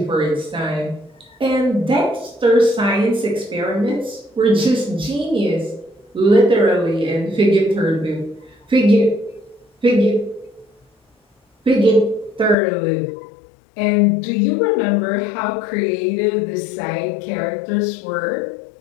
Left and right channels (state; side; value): drops out; right; at 12.6 s